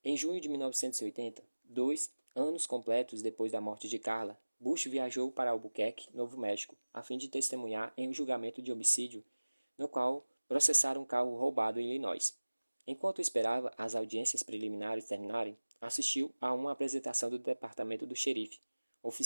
Em junho de 1980, dois Anos completos depois da morte de Carla, Bush viajou para Albuquerque, Novo México, a fim de testemunhar em um julgamento de homicídio, no qual processaram um carro roubado em Illinois. Enquanto esperava as audiências preliminares terminarem, assistiu a uma apresentação do departamento do xerife,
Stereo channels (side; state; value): both; inverted; correlation -1.00